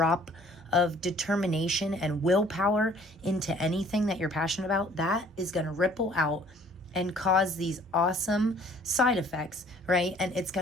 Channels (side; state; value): both; normal; correlation 0.56